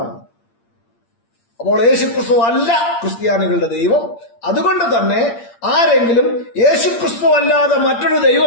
അപ്പോൾ യേശുക്രിസ്തു അല്ല ക്രിസ്ത്യാനികളുടെ ദൈവം. അതുകൊണ്ട് തന്നെ ആരെങ്കിലും യേശുക്രിസ്തു അല്ലാതെ മറ്റൊരു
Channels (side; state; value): right; late; 8.7 ms